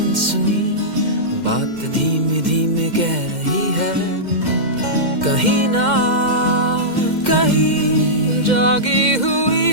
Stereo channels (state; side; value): late; left; 2.1 ms